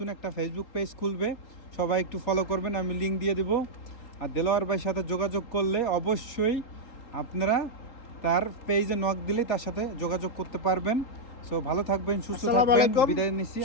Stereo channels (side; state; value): right; late; 3.8 ms